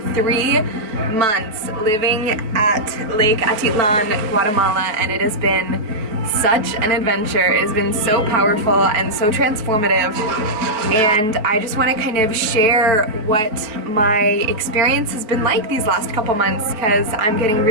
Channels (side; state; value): left; late; 4.5 ms